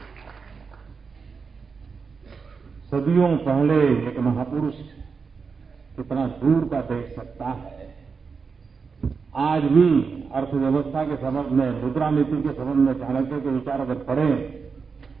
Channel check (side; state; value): left; quieter; 5.3 dB